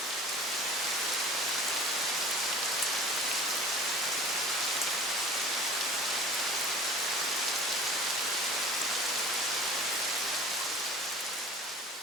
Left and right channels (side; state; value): both; normal; correlation 0.43